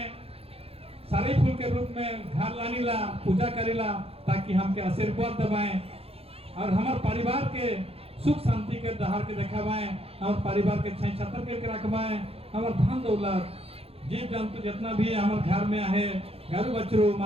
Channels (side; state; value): left; late; 0.28 ms